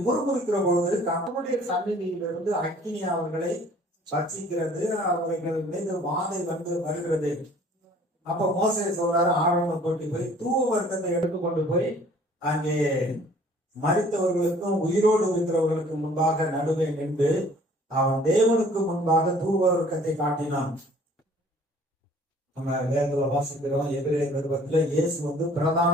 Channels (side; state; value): both; normal; correlation 0.54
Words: முறுமுறுக்கிற பொழுது கர்த்தருடைய சந்நிதியிலிருந்து அக்கினி அவர்களை பட்சிக்கிறது. அவர்கள் மீது வாதை வருகிறது. அப்ப மோசே சொல்றாரு, ஆரோனை கூட்டி போய் தூவ வர்க்கத்தை எடுத்துக்கொண்டு போய் அங்கே மரித்தவர்களுக்கும் உயிரோடு இருக்கிறவர்களுக்கு முன்பாக நடுவே நின்று அவன் தேவனுக்கு முன்பாக தூவ வர்க்கத்தை காட்டினான். நம்ம வேதத்துல வாசிக்கிறோம், எபிரேயர் நிருபத்துல இயேசு பிரதான